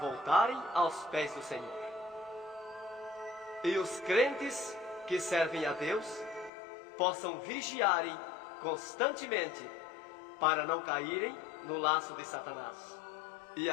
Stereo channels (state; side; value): drops out; right; at 6.5 s